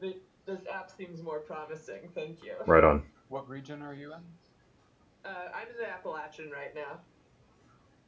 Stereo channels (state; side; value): identical; both; correlation 1.00